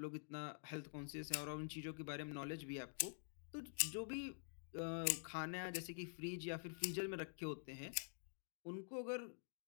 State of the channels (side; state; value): right; silent; digital silence